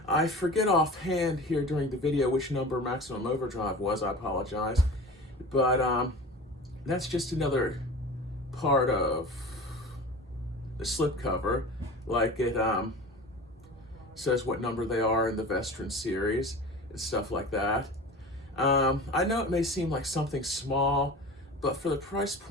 I forget offhand here during the video which number Maximum Overdrive was. I apologize. But that's just another part of the slipcover. Like it says what number they are in the Vestron series and stuff like that. I know it may seem like something small, but for the price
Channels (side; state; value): both; normal; correlation 0.36